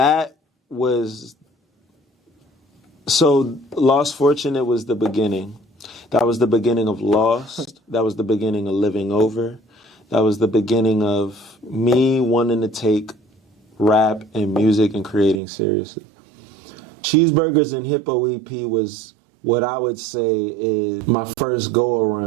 was... So, Lost Fortunate was the beginning. That was the beginning of Lost. That was the beginning of Living Over. That was the beginning of me wanting to take rap and music and creating seriously. Cheeseburgers and Hippo EP was what I would say is my first go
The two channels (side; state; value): left; drops out; at 15.4 s